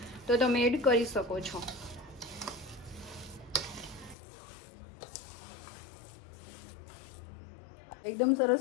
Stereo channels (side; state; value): right; drops out; at 4.2 s